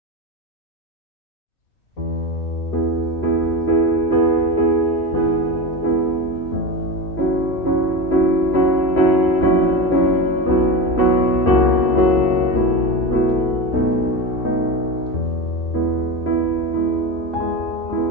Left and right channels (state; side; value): late; right; 2.6 ms